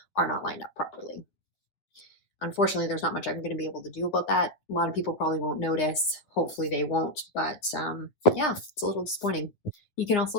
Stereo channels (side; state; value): right; late; 9.7 ms